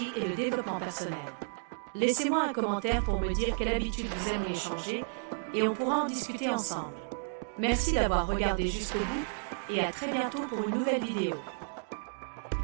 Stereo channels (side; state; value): left; silent; digital silence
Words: et le développement personnel. Laissez-moi un commentaire pour me dire quelle habitude vous aimeriez changer et on pourra en discuter ensemble. Merci d'avoir regardé jusqu'au bout et à très bientôt pour une nouvelle vidéo.